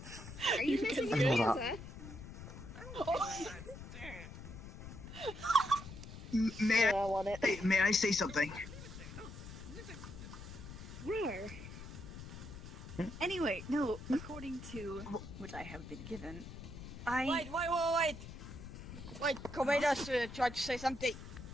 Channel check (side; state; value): left; noise; rumble, 12 dB below the sound